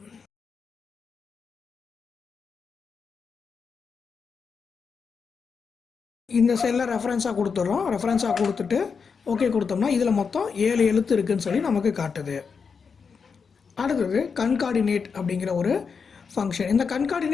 இந்த செல்லை ரெஃபரன்ஸாக கொடுத்துட்றோம். ரெஃபரன்ஸாக கொடுத்துட்டு ஓகே கொடுத்தோம்னா இதில் மொத்தம் 7 எழுத்து இருக்குதுன்னு சொல்லி நமக்கு காட்டுது. அடுத்தது கன்கார்டினேட் அப்படிங்கிற ஒரு ஃபங்க்ஷன். இந்த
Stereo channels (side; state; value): right; quieter; 5.7 dB